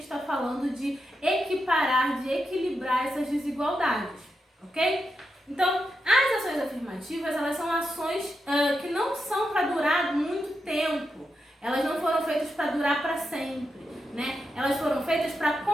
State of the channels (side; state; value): both; normal; correlation 0.86